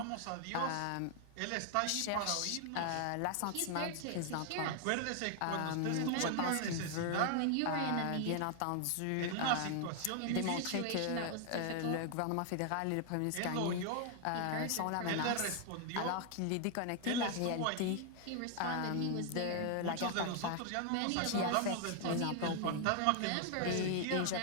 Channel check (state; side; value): different; both; correlation 0.00